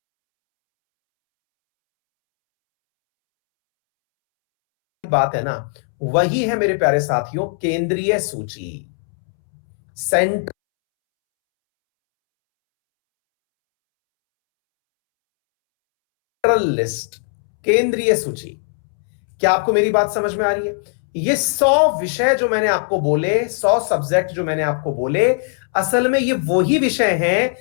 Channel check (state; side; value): silent; right; 67 dB below the other